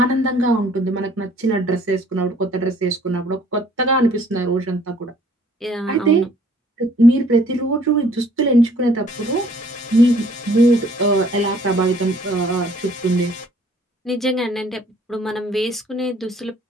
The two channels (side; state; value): both; normal; correlation 0.58